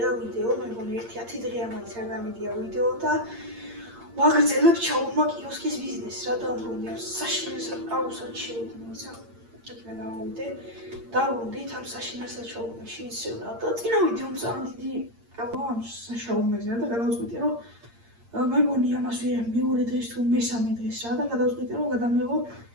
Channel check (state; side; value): late; left; 8.7 ms